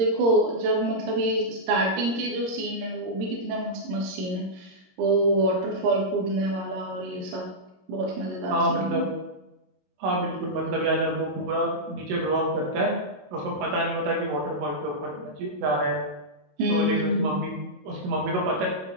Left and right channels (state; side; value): late; left; 22 ms